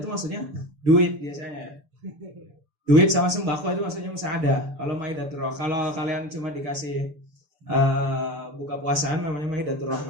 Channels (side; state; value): left; late; 6.8 ms